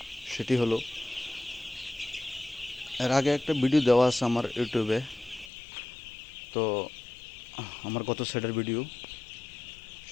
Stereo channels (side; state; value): right; drops out; at 5.5 s